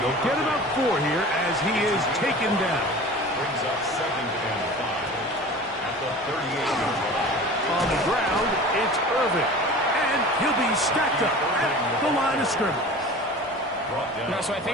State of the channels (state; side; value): normal; both; correlation 0.39